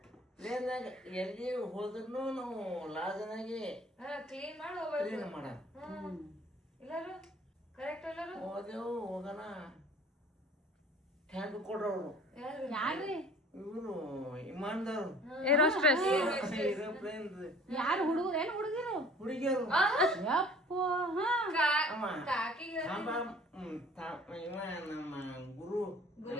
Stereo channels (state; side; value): normal; both; correlation 0.50